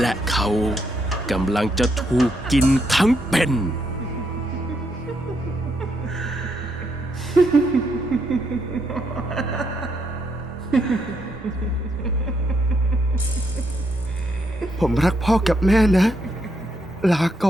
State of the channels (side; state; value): both; normal; correlation 0.77